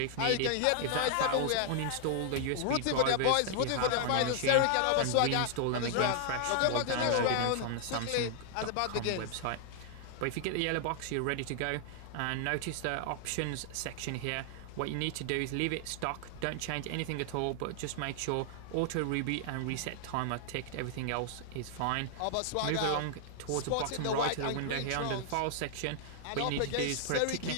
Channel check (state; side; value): different; both; correlation 0.00